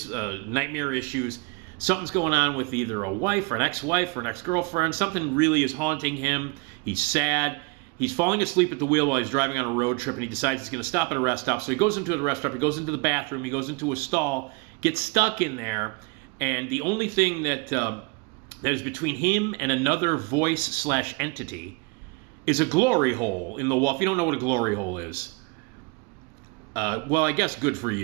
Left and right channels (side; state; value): left; quieter; 29.1 dB